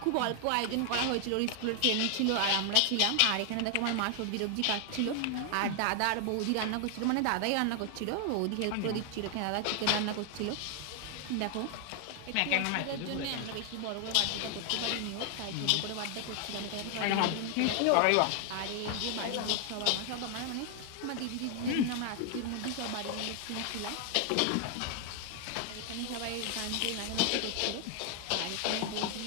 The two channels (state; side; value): different; both; correlation 0.00